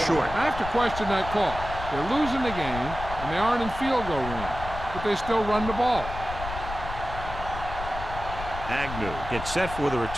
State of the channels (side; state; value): left; noise; rumble, 9 dB below the sound